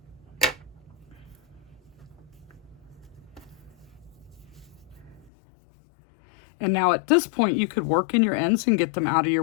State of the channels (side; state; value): right; drops out; at 5.3 s